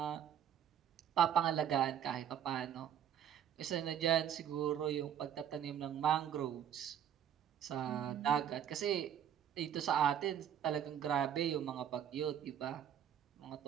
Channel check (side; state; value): left; quieter; 9.5 dB